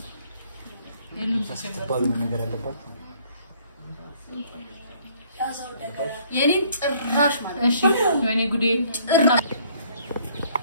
የሉም ተባሉ ነገር አለባት። የኔን ጭራሽ ማለት እሺ ወይኔ ጉዴ ጭራ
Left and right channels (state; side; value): inverted; both; correlation -0.60